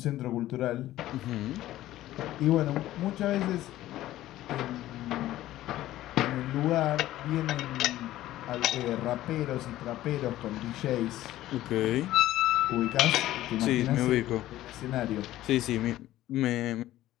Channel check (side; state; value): right; quieter; 14.7 dB